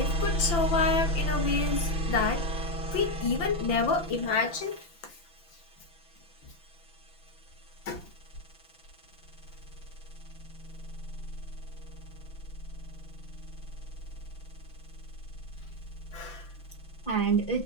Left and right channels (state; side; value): late; right; 5.9 ms